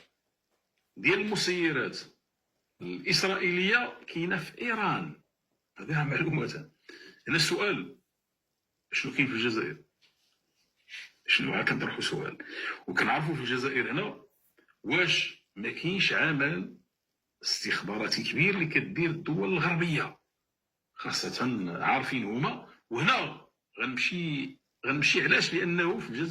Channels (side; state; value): both; identical; correlation 1.00